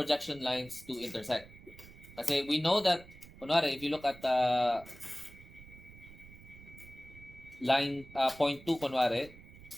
lines to intersect. Kasi we know that, kunwari, if you look at line point 2, kunwari,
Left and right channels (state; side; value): noise; right; rumble, 19 dB below the sound